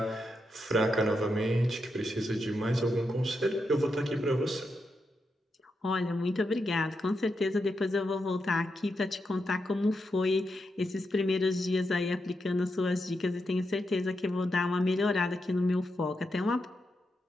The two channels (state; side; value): normal; both; correlation 0.85